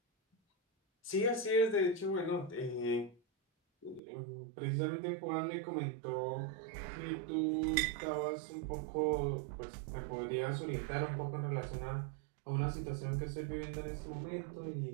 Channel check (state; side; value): drops out; left; at 4.0 s